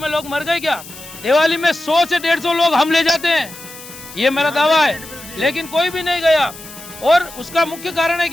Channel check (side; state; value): left; noise; hiss, 16 dB below the sound